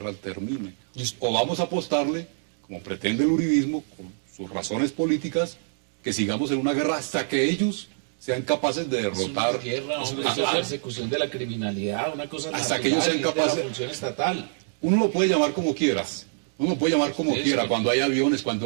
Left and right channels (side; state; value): left; silent; digital silence